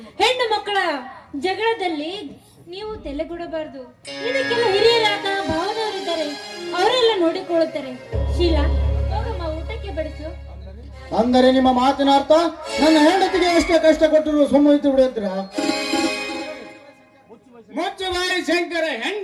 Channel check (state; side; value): identical; both; correlation 1.00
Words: ಹೆಣ್ಣು ಮಕ್ಕಳ ಜಗಳದಲ್ಲಿ ನೀವು ತಲೆಗೊಡಬಾರ್ದು. ಇದಕ್ಕೆಲ್ಲ ಹಿರಿಯರಾದ ಭಾವದವರಿದ್ದಾರೆ, ಅವರೆಲ್ಲ ನೋಡಿಕೊಳ್ಳುತ್ತಾರೆ. ಶೀಲಾ, ಹೋಗಮ್ಮ, ಊಟಕ್ಕೆ ಬಡಿಸು. ಅಂದರೆ ನಿಮ್ಮ ಮಾತಿನ ಅರ್ಥ ನನ್ನ ಹೆಂಡತಿಗೆ ಎಷ್ಟೇ ಕಷ್ಟ ಕೊಟ್ಟರು ಸುಮ್ಮನೆ ಬಿಡುತ್ತೀರಾ? ಮುಚ್ಚುಬಾಯಿ ಶಂಕರ,